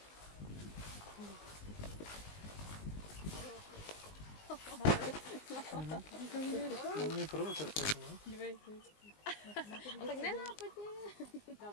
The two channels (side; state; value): right; late; 19 ms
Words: To je provokace, no? Dívej. A tak nenápadně.